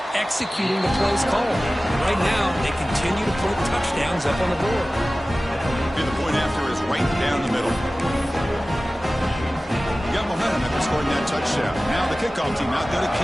executing the plays called. And right now, they continue to put touchdowns up on the board. And the point after is right down the middle. Got momentum after scoring that touchdown. Now the kickoff team out there to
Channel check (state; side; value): normal; both; correlation 0.97